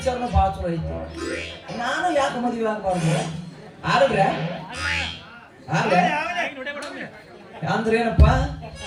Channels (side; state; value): both; identical; correlation 1.00